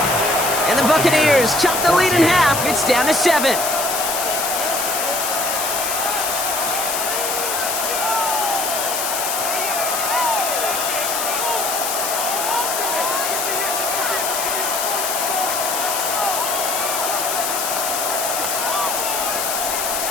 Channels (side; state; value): left; noise; hiss, 1 dB below the sound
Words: And the Buccaneers chop the lead in half. It's down to 7.